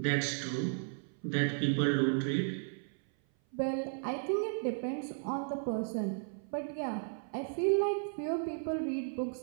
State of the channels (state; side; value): silent; left; 55 dB below the other